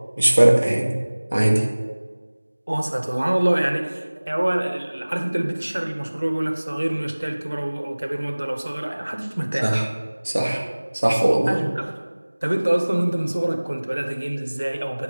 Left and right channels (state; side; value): inverted; both; correlation -1.00